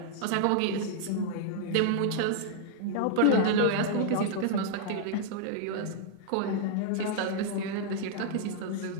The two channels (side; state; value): both; different; correlation -0.01